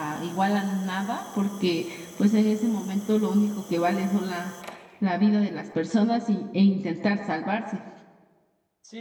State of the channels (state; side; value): identical; both; correlation 1.00